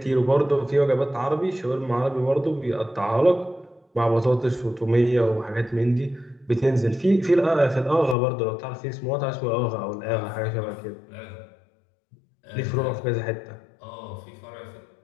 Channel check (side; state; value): right; drops out; at 8.2 s